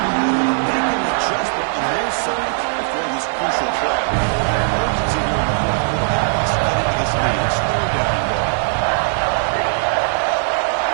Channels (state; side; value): silent; left; 67 dB below the other